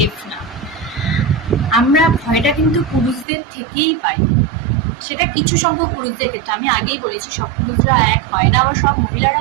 না। আমরা ভয়টা কিন্তু পুরুষদের থেকেই পাই, সেটা কিছু সংখ্যক পুরুষদের ক্ষেত্রে। আমি আগেই বলেছি সব পুরুষরা এক হয় না, আবার সব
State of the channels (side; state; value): left; drops out; at 3.2 s